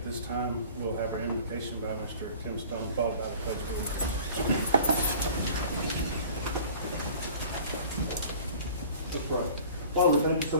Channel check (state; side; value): inverted; both; correlation -0.46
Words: this time, we'll have our invocation by Mr. Tim Stone, followed by the pledge of allegiance. That's right. Father, thank you so